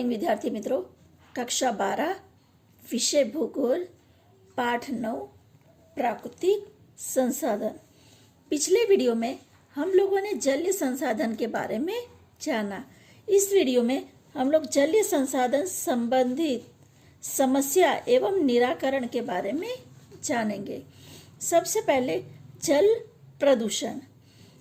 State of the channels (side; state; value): both; identical; correlation 1.00